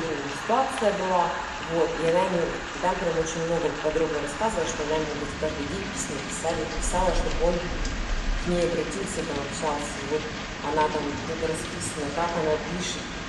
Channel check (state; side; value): identical; both; correlation 1.00